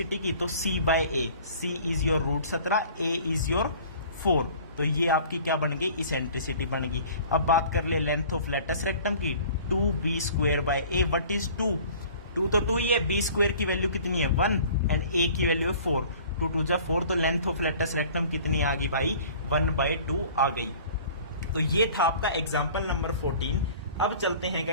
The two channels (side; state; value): both; inverted; correlation -0.48